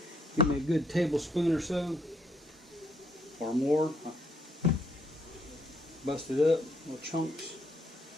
Give me a good tablespoon or so, or more. Bust it up, little chunks.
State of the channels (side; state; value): both; normal; correlation 0.71